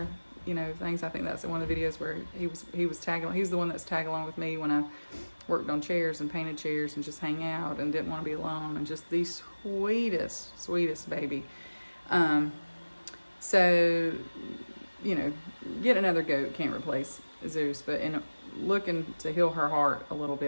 things. I think that's one of the videos where he was tagging. He was the one that's tagging along with me when I worked on chairs and painted chairs and just hang out and didn't want to be alone, and just the sweetest baby. So, you know, get another goat can't replace Zeus, but in looking to heal her heart a little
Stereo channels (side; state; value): both; inverted; correlation -1.00